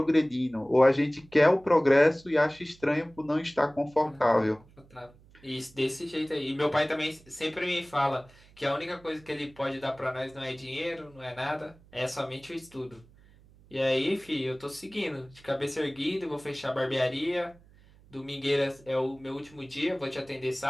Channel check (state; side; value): noise; right; hum, 26 dB below the sound